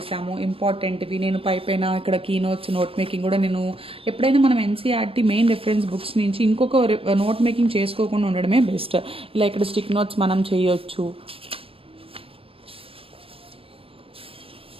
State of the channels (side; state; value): left; late; 0.27 ms